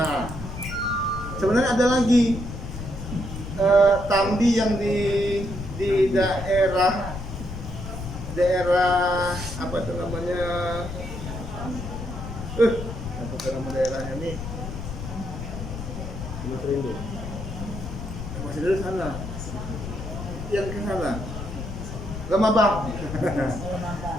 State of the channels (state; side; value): noise; left; rumble, 8 dB below the sound